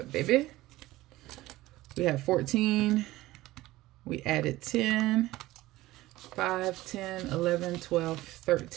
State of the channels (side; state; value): left; quieter; 17.5 dB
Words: baby. We have 14. We added 10. 5, 10, 11, 12,